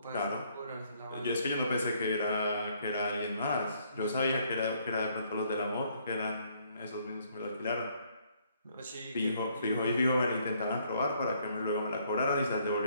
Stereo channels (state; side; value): inverted; both; correlation -0.67